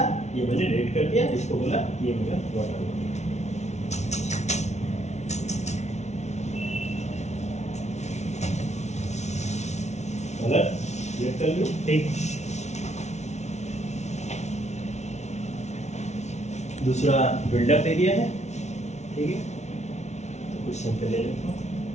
ये मैंने रेड कर दिया, इसको बोला ये मेरा वाटर बॉडी, कलर सिलेक्ट कर लो, ठीक। दूसरा बिल्डअप एरिया है, ठीक है। तो कुछ सैंपल ले लेता हूँ,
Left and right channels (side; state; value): right; late; 0.32 ms